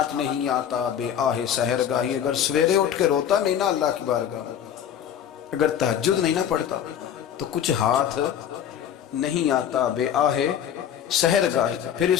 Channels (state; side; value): quieter; right; 9.4 dB